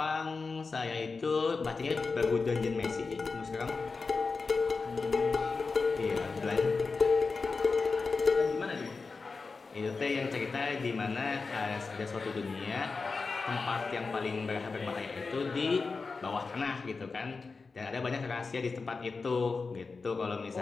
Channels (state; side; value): quieter; right; 4.4 dB